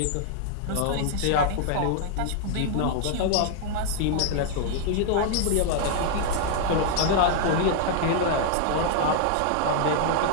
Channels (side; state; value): both; different; correlation 0.00